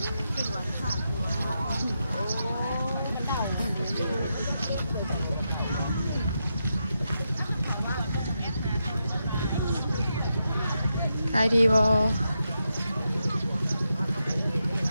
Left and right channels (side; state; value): both; inverted; correlation -0.85